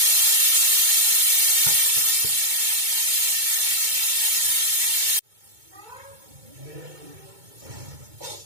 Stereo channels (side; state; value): left; late; 2.2 ms